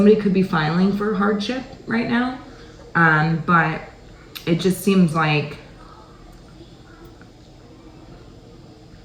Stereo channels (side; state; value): both; identical; correlation 1.00